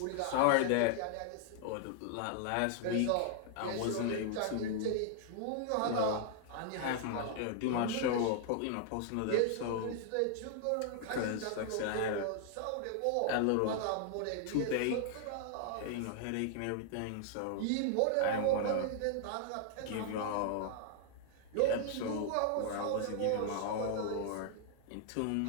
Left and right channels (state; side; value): different; both; correlation -0.01